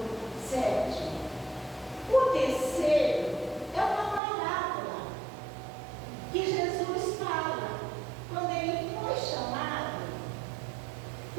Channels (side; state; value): left; drops out; at 4.2 s